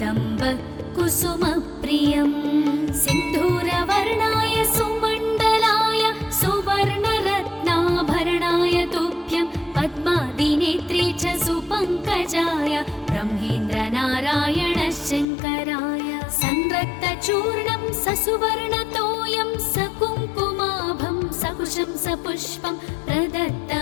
सिन्धूरवर्णाय सुमण्डलाय सुवर्णरत्नाभरणाय तुभ्यं पद्मादिनेत्रे च सुपङ्कजाय ब्रह्मेन्द्रनारायण शङ्कराय संरक्तचूर्णं ससुवर्णतोयं सकुङ्कुमाभं सकुशं सपुष्पं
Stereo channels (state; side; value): drops out; right; at 15.2 s